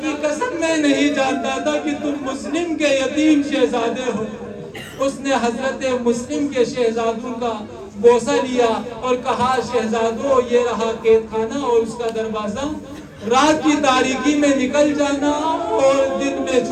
کی قسم میں نہیں جانتا تھا کہ تم مسلم کے یتیم شہزادے ہو۔ اس نے حضرت مسلم کے شہزادوں کا بوسہ لیا اور کہا، شہزادوں یہ رہا قید خانہ اور اس کا دروازہ، رات کی تاریکی میں نکل جانا اور دن میں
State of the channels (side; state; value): both; identical; correlation 1.00